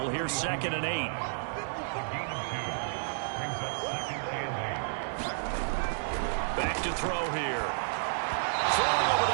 Here's 2nd and 8. Back to throw here. Throwing over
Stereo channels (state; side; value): silent; left; digital silence